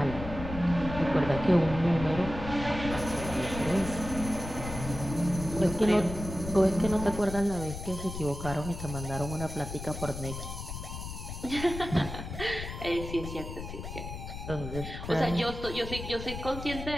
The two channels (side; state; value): left; noise; rumble, 8 dB below the sound